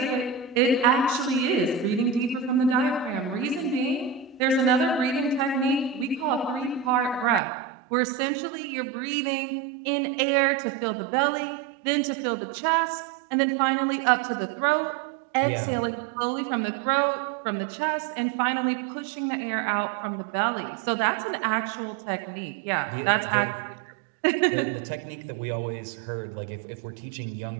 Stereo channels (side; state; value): left; drops out; at 7.4 s